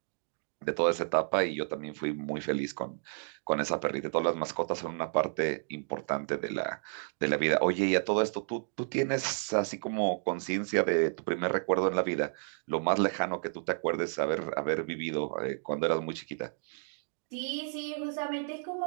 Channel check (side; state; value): left; silent; digital silence